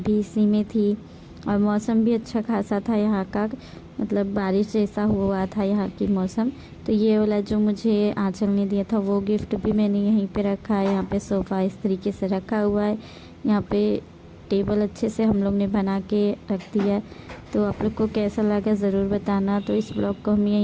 भी इसी में थी। और मौसम भी अच्छा खासा था यहाँ का, मतलब बारिश जैसा हुआ था यहाँ की मौसम। तो ये वाला जो मुझे आंचल ने दिया था वो गिफ्ट भी मैंने यहीं पे रखा है। यहाँ पे सोफ़ा इस तरीके से रखा हुआ है, यहाँ पे टेबल अच्छे से हम लोग ने बना के रख दिया। तो आप लोग को कैसा लगा ज़रूर बताना। तो इस ब्लॉग को हम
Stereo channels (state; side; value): identical; both; correlation 1.00